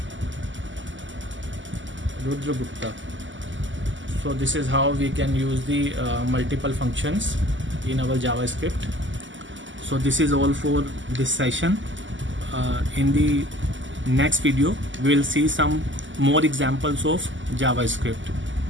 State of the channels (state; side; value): late; left; 0.55 ms